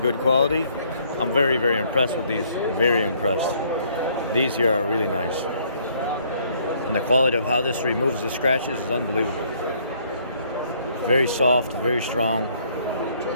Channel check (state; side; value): inverted; both; correlation -0.65